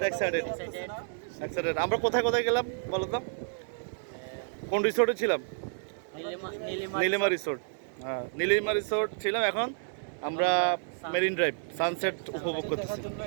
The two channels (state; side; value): silent; left; 58 dB below the other